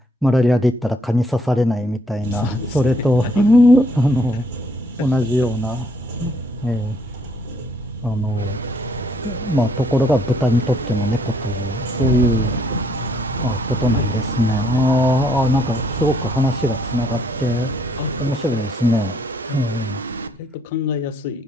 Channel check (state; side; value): normal; both; correlation 0.68